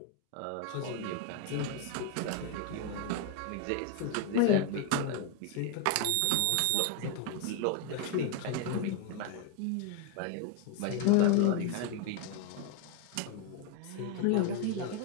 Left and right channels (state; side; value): different; both; correlation 0.01